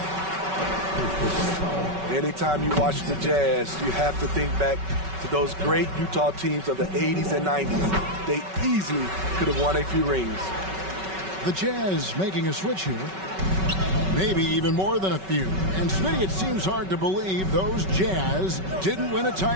Anytime you watch the Jazz, you have to think back to those great Utah teams of the 80s and 90s. They easily could have won a few rings. The Jazz making a switch here. Maybe even more than a few. And Smitty, it seems hard to believe those Jazz didn't win a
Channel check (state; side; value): late; left; 5.3 ms